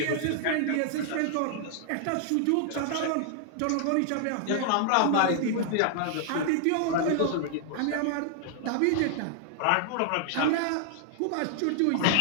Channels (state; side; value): different; both; correlation 0.00